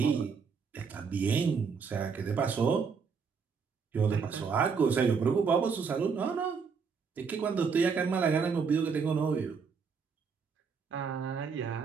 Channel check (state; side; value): quieter; left; 5.7 dB